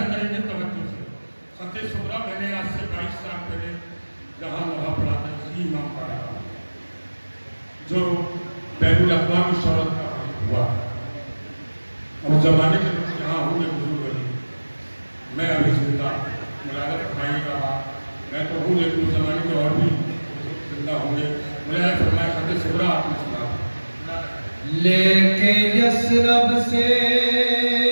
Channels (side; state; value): both; inverted; correlation -1.00